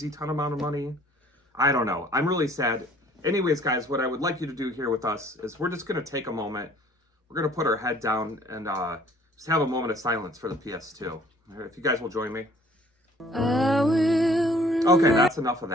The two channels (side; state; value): both; normal; correlation 0.55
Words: ton amount of money. I don't know. I'm really sad. Anyways, guys, what I would like you to do here with us is we're just going to take a moment. We're going to put our head down and just have a moment of silence for the PS2. If you guys will join me. Okay, that's enough of